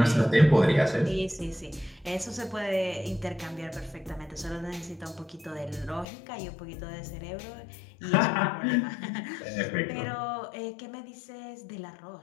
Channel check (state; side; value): drops out; right; at 6.1 s